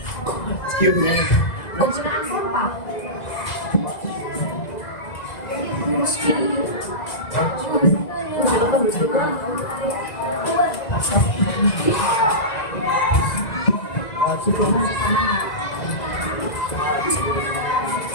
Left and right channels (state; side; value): late; right; 2.0 ms